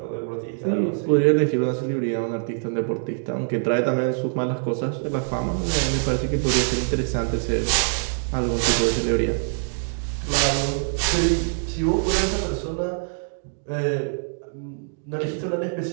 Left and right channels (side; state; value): left; silent; digital silence